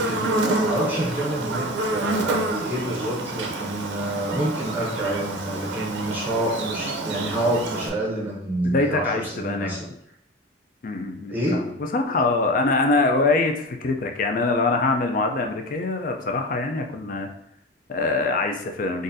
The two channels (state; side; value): normal; both; correlation 0.29